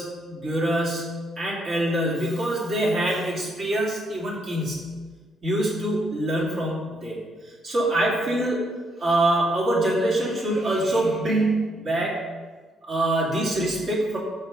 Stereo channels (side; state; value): both; normal; correlation 0.74